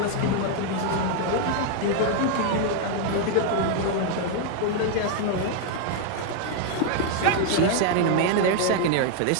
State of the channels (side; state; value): both; different; correlation 0.00